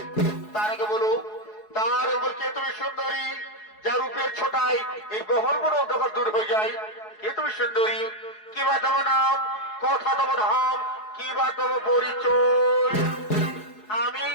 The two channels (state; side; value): late; right; 4.7 ms